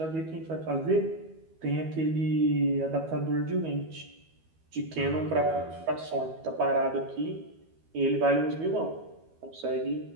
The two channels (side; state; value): left; late; 12 ms